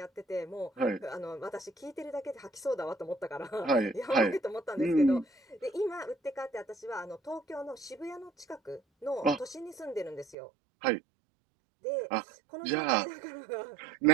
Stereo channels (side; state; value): left; drops out; at 10.4 s